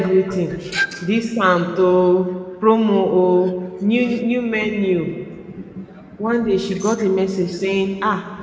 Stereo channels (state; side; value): identical; both; correlation 1.00